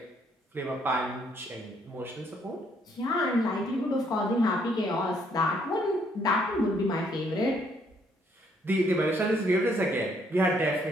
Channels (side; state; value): both; normal; correlation 0.68